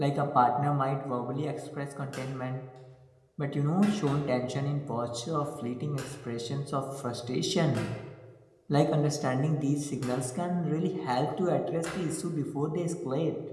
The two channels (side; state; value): both; identical; correlation 1.00